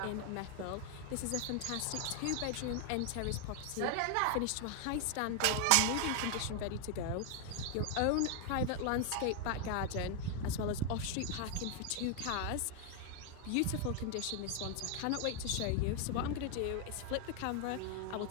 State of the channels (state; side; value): different; both; correlation 0.00